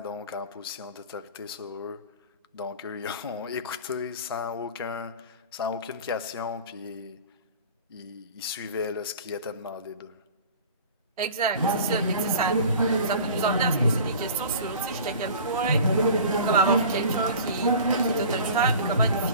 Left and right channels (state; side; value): inverted; both; correlation -0.41